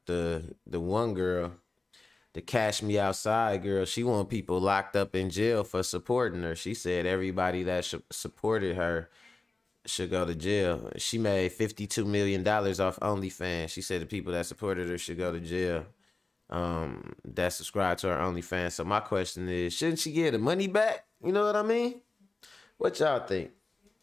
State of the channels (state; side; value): quieter; right; 3.4 dB